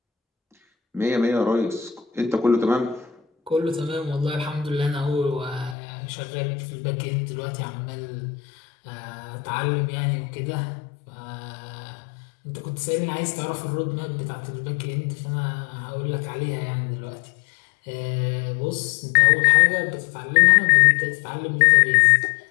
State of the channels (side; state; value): right; drops out; at 5.8 s